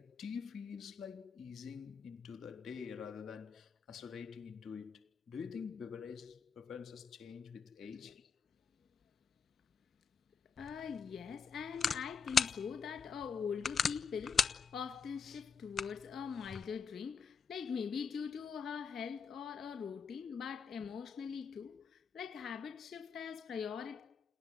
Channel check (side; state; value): right; quieter; 5.9 dB